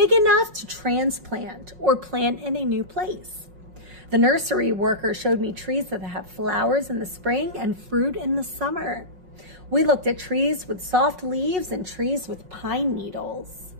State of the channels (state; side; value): late; left; 5.5 ms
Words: enough to transplant or plant in a new place. The nursery worker showed me trees that have flowers in the spring and fruit in the summer. We looked at trees with soft leaves and trees with pine needles.